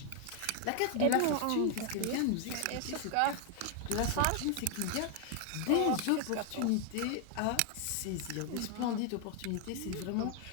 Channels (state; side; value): different; both; correlation 0.00